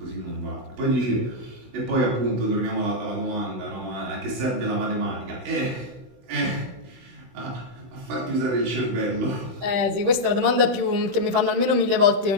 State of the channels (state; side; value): late; left; 16 ms